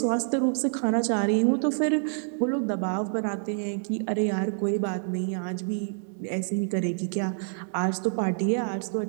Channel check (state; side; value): silent; left; digital silence